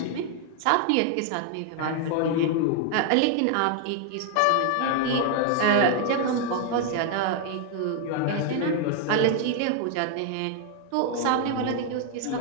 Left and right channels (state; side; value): different; both; correlation 0.00